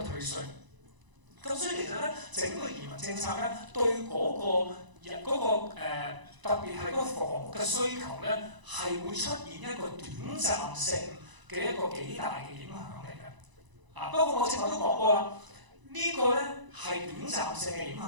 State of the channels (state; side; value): late; left; 1.0 ms